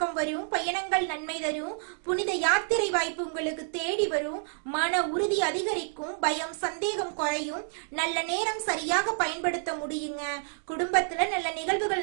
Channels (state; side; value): silent; left; 59 dB below the other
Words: வரும். பயணங்கள் நன்மை தரும். புனித யாத்திரை வாய்ப்பு உங்களுக்கு தேடி வரும். மன உறுதி அதிகரிக்கும். பயம் சந்தேகம் குறையும். நல்ல நேரம் சரியாக பயன்படுத்த முடியுங்க. குடும்பத்துல நல்ல